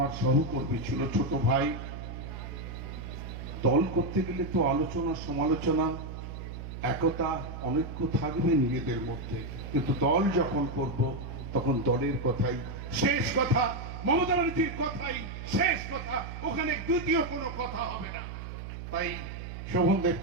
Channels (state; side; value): noise; right; hum, 9 dB below the sound